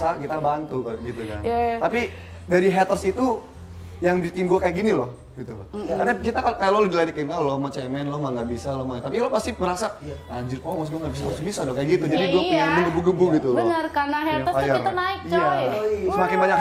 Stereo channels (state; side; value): identical; both; correlation 1.00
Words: kita bantu gitu kan. Yeah. Tapi dari haters itu yang bikin gue kayak gini loh, gitu loh. Karena kita kalau lo diledekin, lo mau cemen, lo mah nggak bisa, lo mah. Tapi lo pasti merasa, anjir, mas gue nggak bisa, harus bisa dong kayak gitu. Jadi gue pengen menggebu-gebu gitu loh. Bener, karena haters tuh kita naik coy. Iya. Semakin banyak